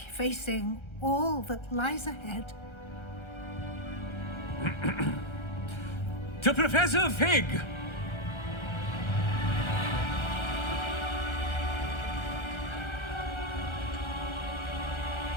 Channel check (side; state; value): right; late; 1.3 ms